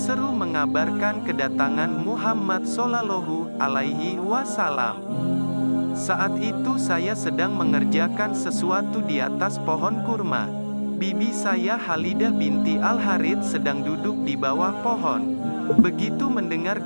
mengabarkan kedatangan Muhammad Shallallahu Alaihi Wasallam. Saat itu saya sedang mengerjakan sesuatu di atas pohon kurma. Bibi saya Halidah binti Al-Harith sedang duduk di bawah pohon. Begitu mendengar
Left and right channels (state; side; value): inverted; both; correlation -1.00